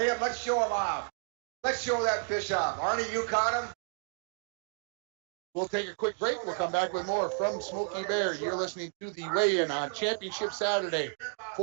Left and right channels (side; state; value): left; silent; 57 dB below the other